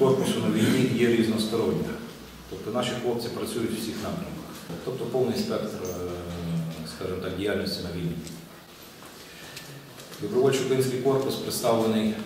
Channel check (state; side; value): identical; both; correlation 1.00